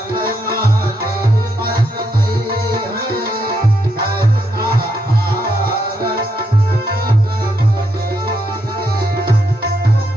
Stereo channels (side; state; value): both; normal; correlation 0.79